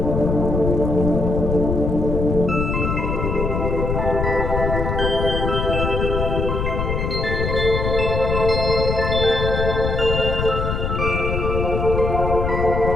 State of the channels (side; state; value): left; noise; rumble, 1 dB below the sound